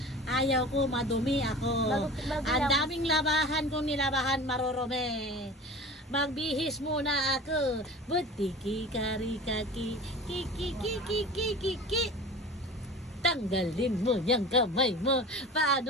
Ayaw ko, madumi ako. Bago Ang lang. daming labahan kung nilabahan, marurumi. Magbihis muna ako. Butiki, kari, kaki, kiki. Tanggalin mo yung kamay mo.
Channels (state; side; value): normal; both; correlation 0.36